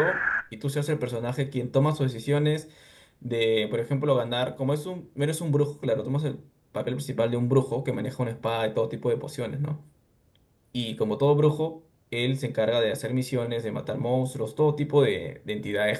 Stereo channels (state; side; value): identical; both; correlation 1.00